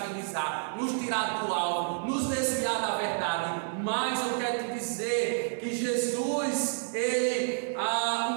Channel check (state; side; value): silent; left; digital silence